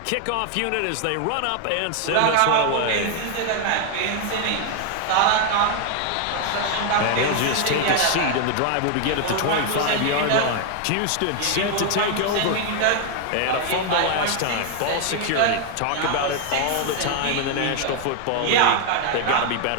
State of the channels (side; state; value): both; different; correlation 0.00